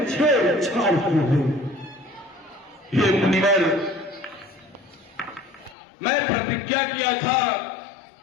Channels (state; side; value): drops out; right; at 5.8 s